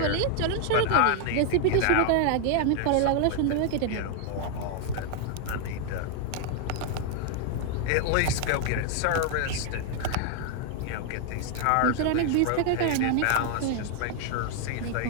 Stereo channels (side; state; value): both; different; correlation 0.00